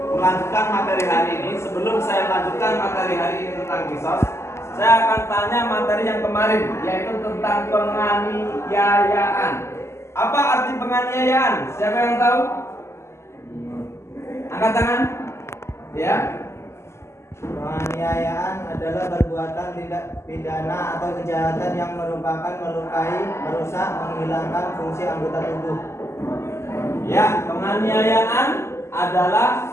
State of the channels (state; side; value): late; right; 0.13 ms